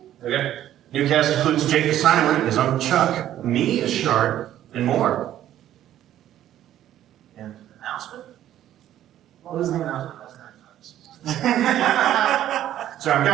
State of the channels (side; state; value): left; quieter; 12.1 dB